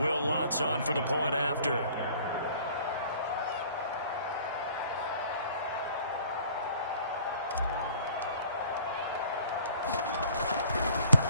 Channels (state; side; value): inverted; both; correlation -0.52